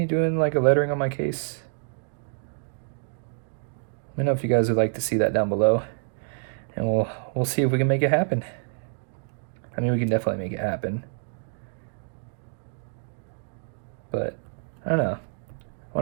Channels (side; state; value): left; silent; digital silence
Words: doing like a lettering on my case? Let me know if you guys would like to see that down below. And we'll see if we can make it happen. I mean, we can definitely make it happen. But I don't know. I